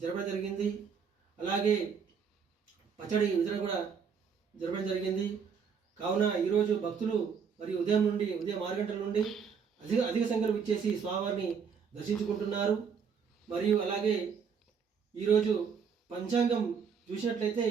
జరపడం జరిగింది. అలాగే పచ్చడి వితరణ కూడా జరపడం జరిగింది. కావున ఈరోజు భక్తులు మరి ఉదయం 6 గంటల నుండి అధిక సంఖ్యలో ఇచ్చేసి స్వామివారిని దర్శించుకుంటున్నారు. మరియు అలాగే ఈరోజు పంచాంగం చూసినట్లయితే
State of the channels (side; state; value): left; quieter; 6.4 dB